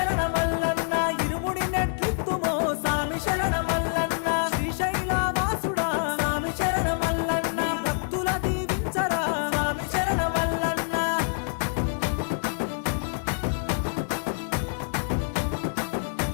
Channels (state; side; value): silent; right; 61 dB below the other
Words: ఇరుముడి నెట్లిత్తుమో స్వామి శరణమల్లన్న. శ్రీశైల వాసుడా స్వామి శరణమల్లన్న, భక్తుల దీవించరా స్వామి శరణమల్లన్న.